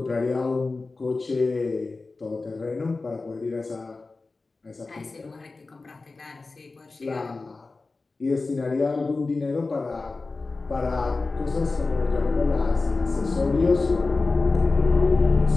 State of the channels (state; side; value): quieter; right; 3.7 dB